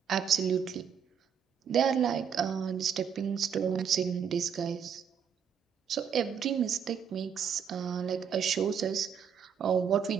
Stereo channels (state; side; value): quieter; left; 7.5 dB